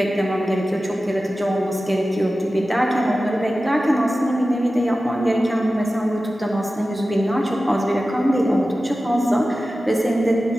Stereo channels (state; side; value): normal; both; correlation 0.95